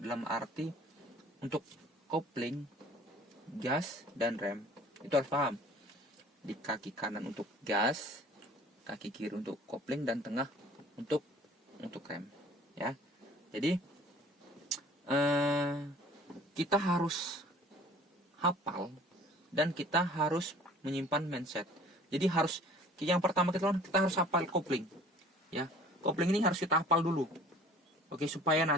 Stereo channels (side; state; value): both; normal; correlation 0.50